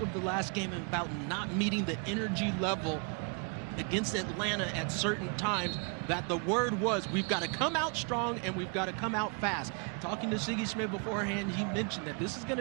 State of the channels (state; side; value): quieter; left; 36.3 dB